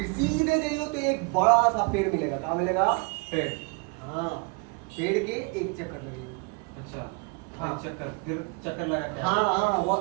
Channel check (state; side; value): quieter; left; 31.9 dB